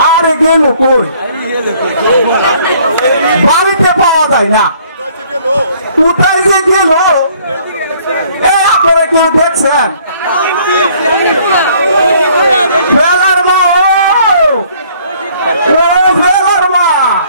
আরে গেল কই বাড়িতে পাওয়া যায় না কোথায় যে গেল আপনারা কেউ দেখছেন ফেলার মা ও ফেলার মা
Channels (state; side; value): inverted; both; correlation -0.60